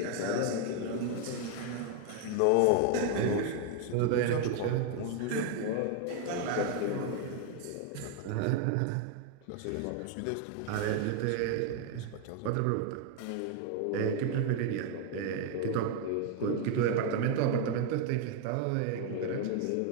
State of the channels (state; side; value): different; both; correlation 0.00